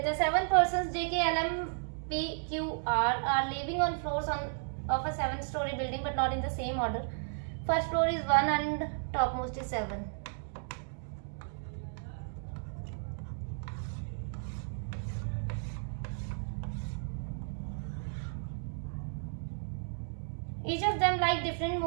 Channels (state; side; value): silent; left; digital silence